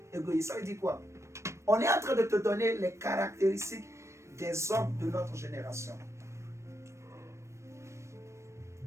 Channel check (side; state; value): left; late; 0.14 ms